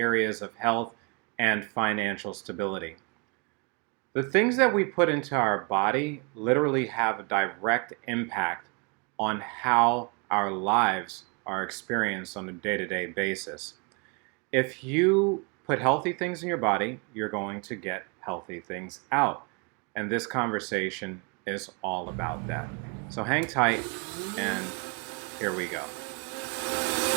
of health and financial stability. The things that we put into our body literally have a direct impact on how our lives are experienced on a day-to-day basis. If you put healthy things in your body, you're going to get healthy things out. And this conversation is all about that. So hang tight, and here we go.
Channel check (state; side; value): quieter; left; 33.4 dB